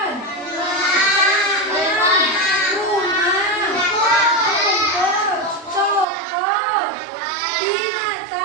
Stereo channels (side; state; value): left; drops out; at 6.1 s